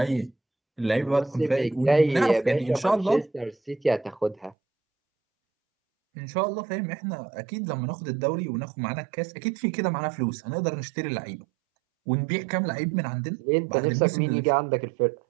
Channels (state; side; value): drops out; left; at 4.5 s